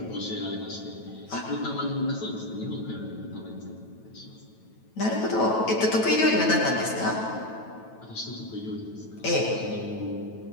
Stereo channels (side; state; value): right; late; 9.1 ms